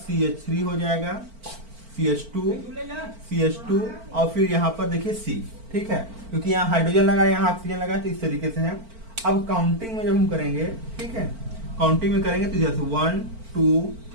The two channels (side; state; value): left; late; 4.4 ms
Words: हो जाएगा, CH2 और फिर यहां पर देखिए C, ठीक है, क्योंकि यहाँ हाइड्रोजन लगा है, यहाँ ऑक्सीजन लगा है, तो इस तरीके से है। अब काउंटिंग में जब हम करेंगे, ठीक है, काउंटिंग में करेंगे तो जैसे 1 2